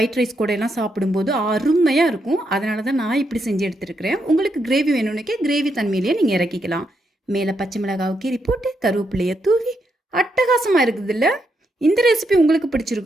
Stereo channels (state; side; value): normal; both; correlation 0.80